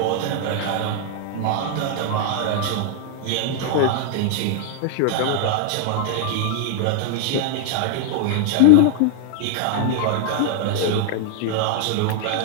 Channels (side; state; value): both; different; correlation 0.00